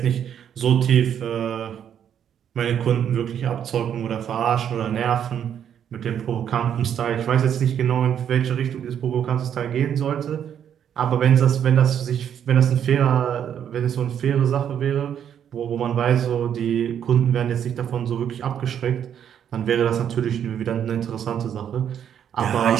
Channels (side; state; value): left; quieter; 9.1 dB